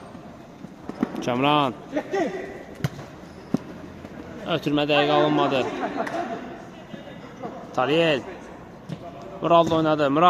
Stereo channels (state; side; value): identical; both; correlation 1.00